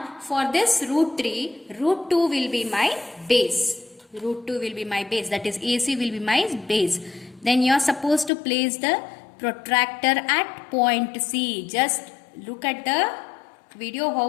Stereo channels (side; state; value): right; drops out; at 8.3 s